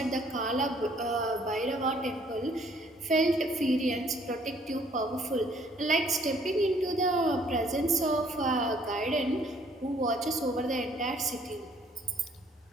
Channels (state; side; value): normal; both; correlation 0.62